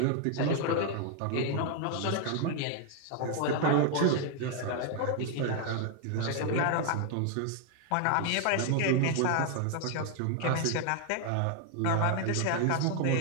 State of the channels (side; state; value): both; different; correlation 0.00